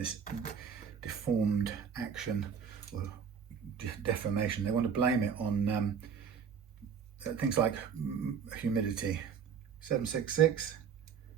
deformed action or deformation. They want to blame it on things like humidity. 766.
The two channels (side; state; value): left; quieter; 7.0 dB